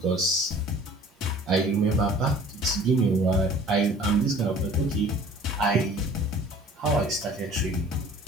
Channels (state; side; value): normal; both; correlation 0.49